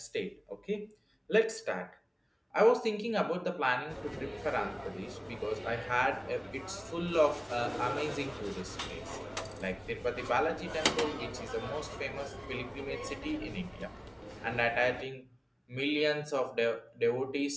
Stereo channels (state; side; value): identical; both; correlation 1.00